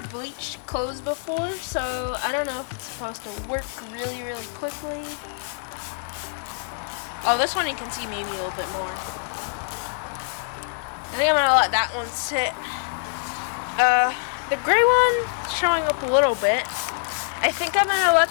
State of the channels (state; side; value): silent; right; 59 dB below the other